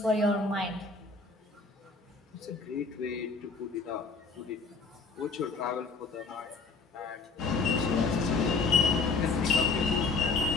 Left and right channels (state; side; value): quieter; right; 4.1 dB